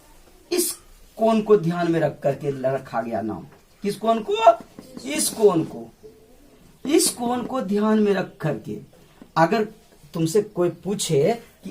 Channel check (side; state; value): both; identical; correlation 1.00